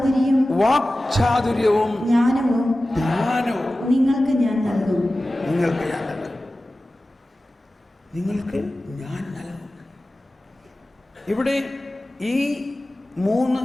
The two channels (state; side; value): normal; both; correlation 0.96